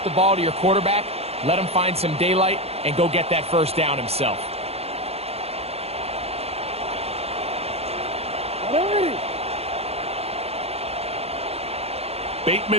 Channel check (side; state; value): left; late; 0.29 ms